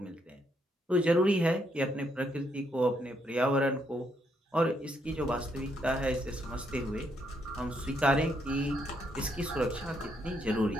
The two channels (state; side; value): normal; both; correlation 0.75